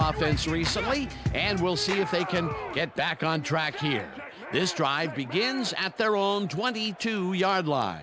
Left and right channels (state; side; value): identical; both; correlation 1.00